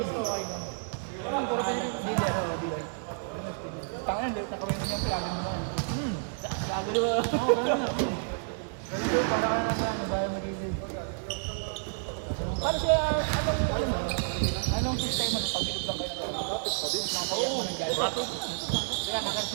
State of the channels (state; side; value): silent; left; digital silence